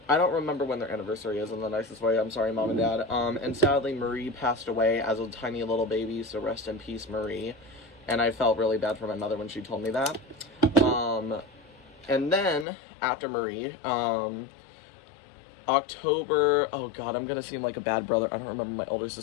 I don't remember when their anniversary is in the nicest way. I'm sorry, Mom and Dad. And sadly, Marie passed away as a tiny little baby, so rest in peace, Marie. And I felt really bad for my mother when she told me that. And then, after Marie, October, oh god, I'm gonna seem like a bad brother, I don't remember my older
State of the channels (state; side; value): drops out; right; at 12.7 s